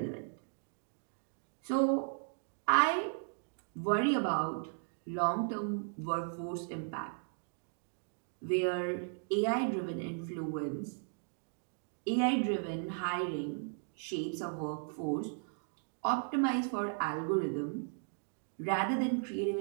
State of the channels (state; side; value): silent; left; 54 dB below the other